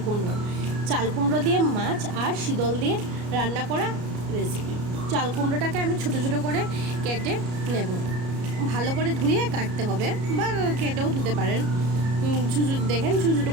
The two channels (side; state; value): left; late; 33 ms